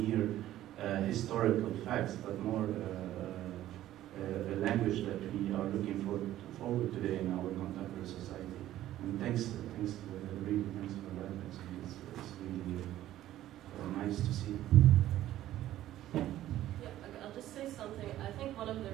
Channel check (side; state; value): left; quieter; 13.6 dB